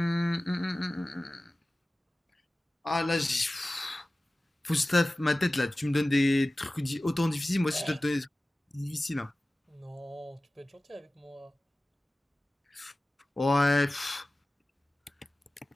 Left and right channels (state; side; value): normal; both; correlation 0.97